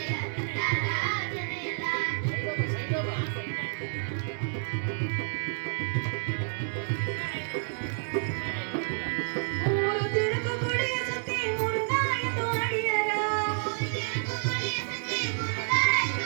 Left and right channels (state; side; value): silent; left; digital silence